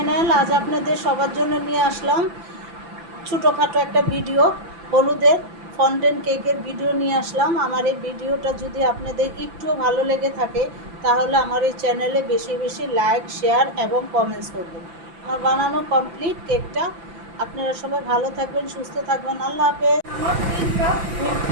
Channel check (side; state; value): left; late; 5.9 ms